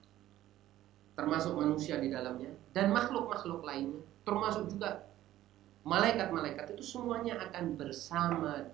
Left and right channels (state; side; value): quieter; left; 13.9 dB